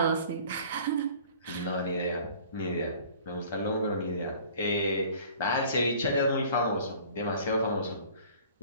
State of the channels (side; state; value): both; inverted; correlation -0.49